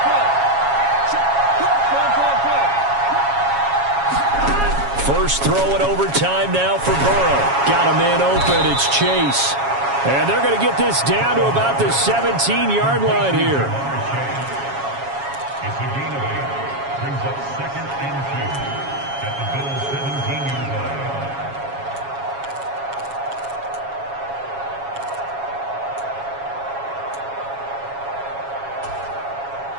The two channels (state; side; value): late; left; 7.3 ms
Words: First throw in overtime now for Burrow. Got a man open. It's Chase. And they're going to get this down to about the 17-yard line here. It's a gain of 8. Brings up second and 2 at the Bills' 17-yard line.